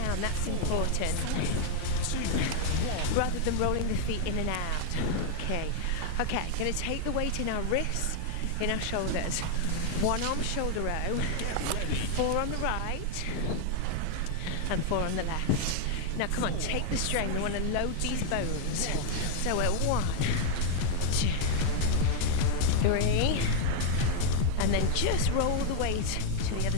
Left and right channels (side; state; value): both; different; correlation 0.00